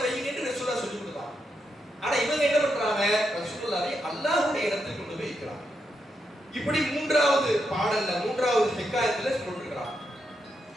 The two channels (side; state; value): both; normal; correlation 0.83